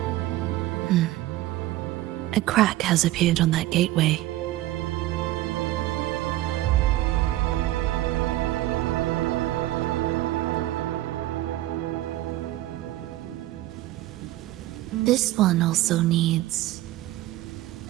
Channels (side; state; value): left; quieter; 15.8 dB